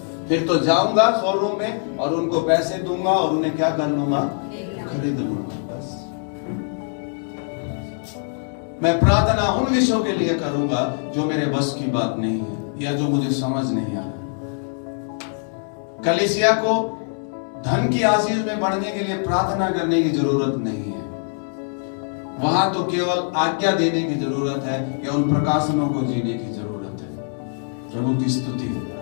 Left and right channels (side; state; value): right; silent; digital silence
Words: फिर तो जाऊंगा शोरूम में और उनको पैसे दूंगा और उन्हें क्या कर लूंगा? खरीद लूंगा। बस मैं प्रार्थना उन विषयों के लिए करूंगा जो मेरे बस की बात नहीं है या जो मुझे समझ नहीं आता। कलीसिया को धन की आशीष में बढ़ने के लिए प्रार्थना करने की जरूरत नहीं है। वहां तो केवल आज्ञा देने की जरूरत है या उन प्रकाशनों को जीने की जरूरत है। प्रभु की स्तुति हो।